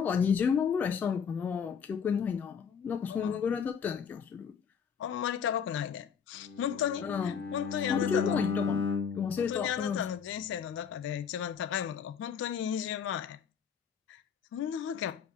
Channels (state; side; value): quieter; right; 7.0 dB